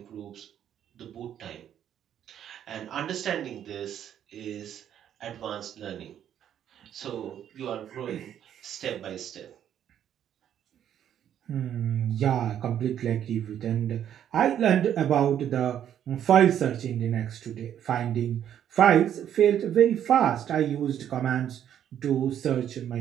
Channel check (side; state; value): left; quieter; 10.0 dB